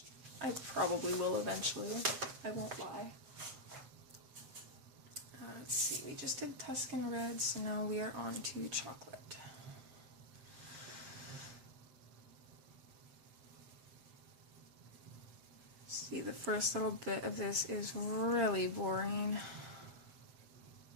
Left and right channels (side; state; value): left; late; 7.4 ms